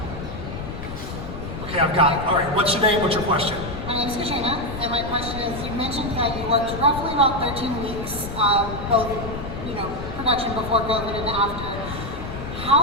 Okay, I've got it. All right, what's your name, what's your question? My name is Katrina, and my question is, you mentioned that you worked roughly about 13 weeks, both, you know, production before COVID and after.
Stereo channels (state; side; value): noise; left; rumble, 8 dB below the sound